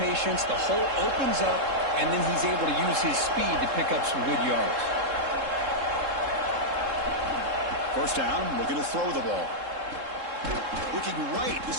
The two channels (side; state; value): left; late; 3.7 ms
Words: patience, the hole opens up, and then he's able to use his speed to pick up some good yards. First down, looking to throw the ball. Looking right,